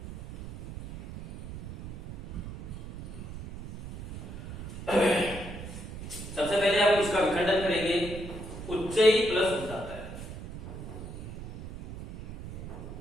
सबसे पहले हम इसका विखंडन करेंगे। उच्चई प्लस उदात्तय,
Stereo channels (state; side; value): noise; right; rumble, 10 dB below the sound